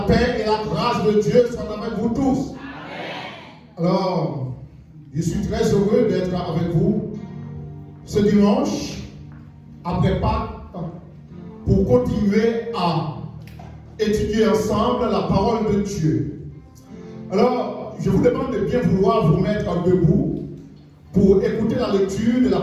paix et la grâce de Dieu soient avec vous tous. Amen. Alors, je suis très heureux d'être avec vous ce dimanche, après Pâques, pour continuer à étudier ensemble la parole de Dieu. Alors, je vous demande de bien vouloir vous mettre debout pour écouter la lecture de la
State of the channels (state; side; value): identical; both; correlation 1.00